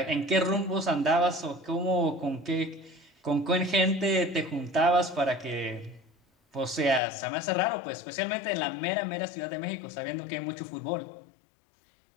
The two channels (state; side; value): drops out; right; at 7.0 s